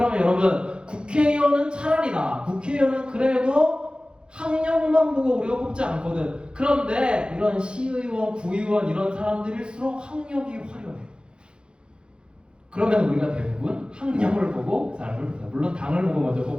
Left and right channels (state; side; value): late; left; 0.053 ms